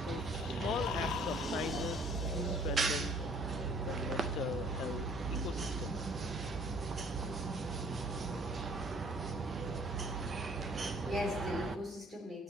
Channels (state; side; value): normal; both; correlation 0.57